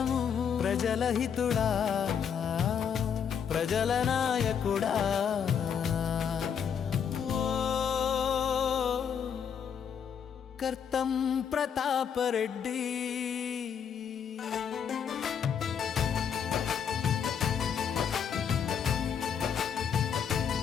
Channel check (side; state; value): right; quieter; 7.6 dB